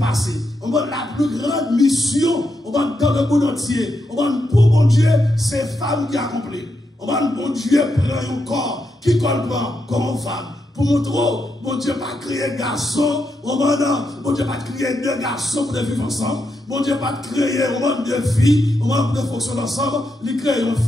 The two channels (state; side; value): normal; both; correlation 0.83